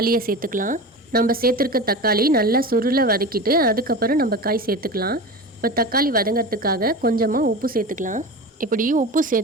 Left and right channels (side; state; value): both; normal; correlation 0.29